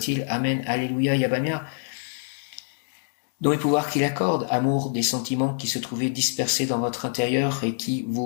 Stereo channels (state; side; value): silent; right; digital silence